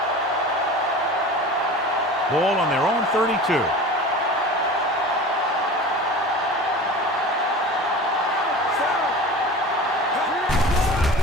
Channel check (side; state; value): both; normal; correlation 0.36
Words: Ball on their own 32.